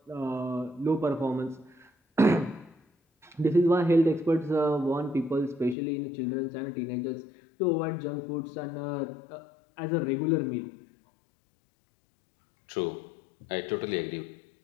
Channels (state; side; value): drops out; right; at 5.8 s